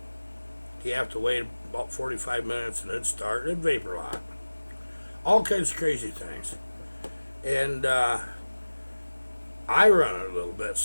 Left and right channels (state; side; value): inverted; both; correlation -1.00